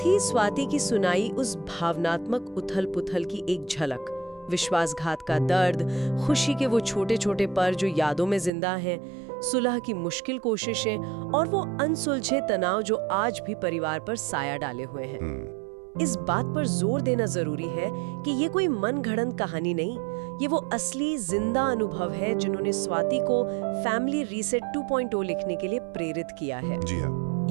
स्वाति की सुनाई उस भावनात्मक उथल पुथल की एक झलक। विश्वासघात का दर्द, खुशी के वो छोटे छोटे पल जो यादों में जिंदा हैं, सुलह की मुश्किल कोशिशें और वो अनसुलझे तनाव जो आज भी परिवार पर साया डाले हुए हैं। इस बात पर जोर देना जरूरी है कि ये कोई मनगढ़ंत कहानी नहीं, ये वो असली जिंदा अनुभव है जिन्होंने स्वाति को फैमिली रीसेट 2.0 लिखने के लिए प्रेरित किया है। जी हाँ।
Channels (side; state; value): left; drops out; at 8.5 s